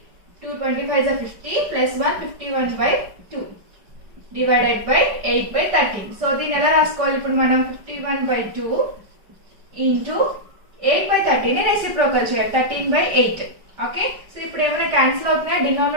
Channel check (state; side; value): late; left; 5.1 ms